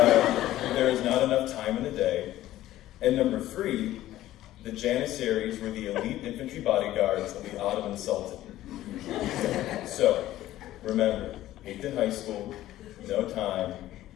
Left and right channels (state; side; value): quieter; right; 14.4 dB